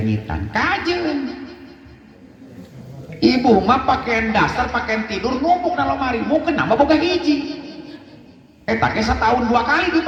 kajen. Ibu mah pakaian dasar, pakaian tidur numpuk dalam lemari, mau kenapa boga hiji? Tak setahun 2 kali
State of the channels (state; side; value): identical; both; correlation 1.00